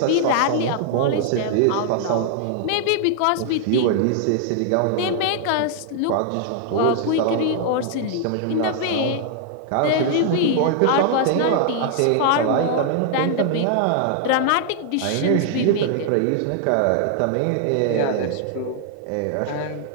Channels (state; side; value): different; both; correlation 0.00